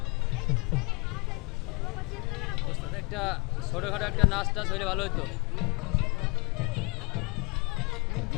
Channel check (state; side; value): quieter; right; 30.5 dB